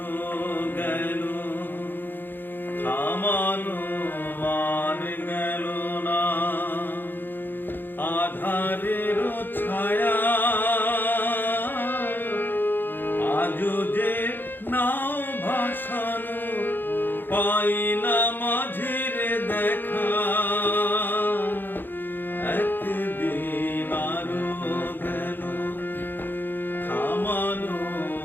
গেল থামানো আর গেল না আধারের ছায়া আজও যে নাও ভাসানো পাই না মাঝির দেখা একদিন আরো গেল থামানো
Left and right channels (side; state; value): right; late; 0.095 ms